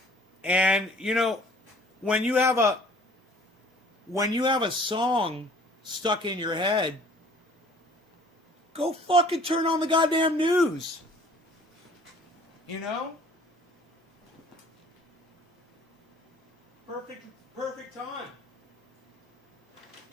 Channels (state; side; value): normal; both; correlation 0.53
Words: And you know, when you have a song stuck in your head, go fucking turn on the goddamn news. You know? Perfect time.